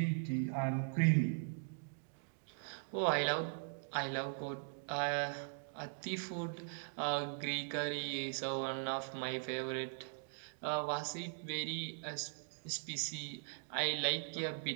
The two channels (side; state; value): left; silent; digital silence